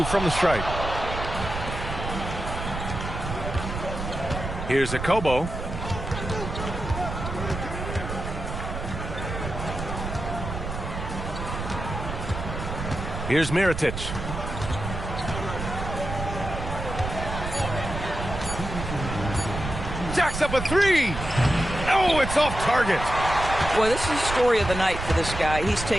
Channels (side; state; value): right; noise; rumble, 6 dB below the sound